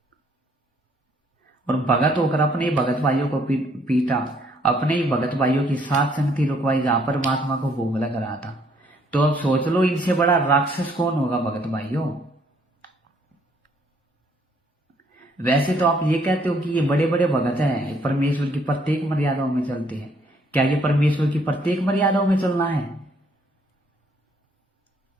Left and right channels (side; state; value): both; normal; correlation 0.66